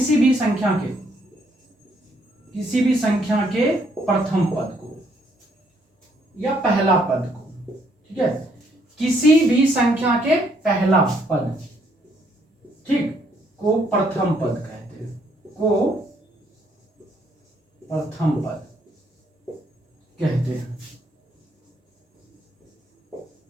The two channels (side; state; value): both; normal; correlation 0.69